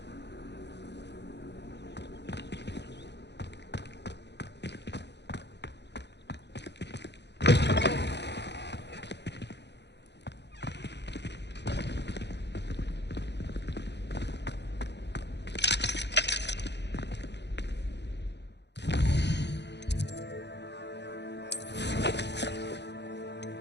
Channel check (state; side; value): late; right; 0.50 ms